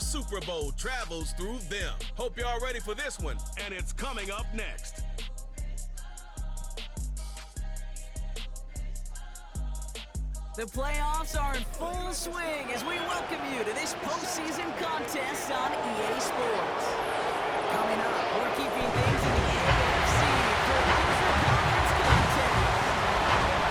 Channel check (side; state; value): both; identical; correlation 1.00